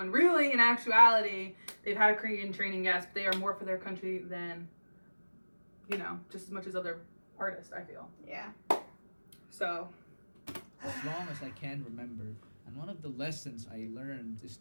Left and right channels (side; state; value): both; inverted; correlation -1.00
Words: really in actuality they've had a Korean training, yes, but they are more for their country than, you know, just as much as other artists, I feel. Yeah. So As long as I can remember, and one of the lessons I learned is